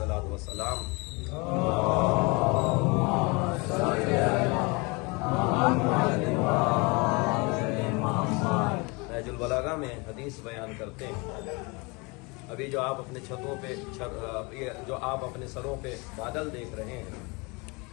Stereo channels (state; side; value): quieter; right; 28.1 dB